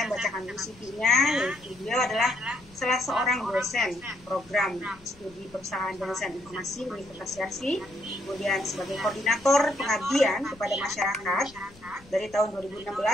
bacakan dulu CV-nya, yaitu beliau adalah salah seorang dosen program studi perusahaan dosen informasi Universitas Yarsi, kemudian sebagai koordinator pengabdian kepada masyarakat dari tahun 2016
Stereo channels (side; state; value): left; noise; rumble, 26 dB below the sound